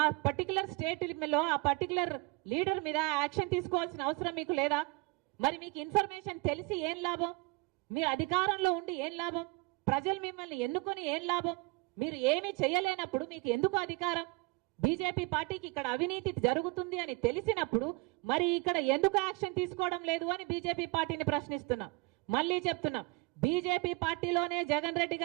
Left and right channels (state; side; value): quieter; left; 25.7 dB